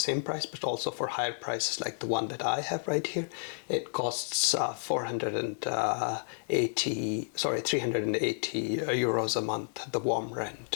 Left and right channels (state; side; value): silent; right; digital silence